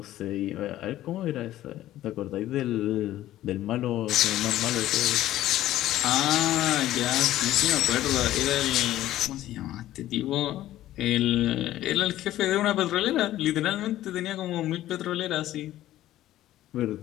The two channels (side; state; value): right; quieter; 14.0 dB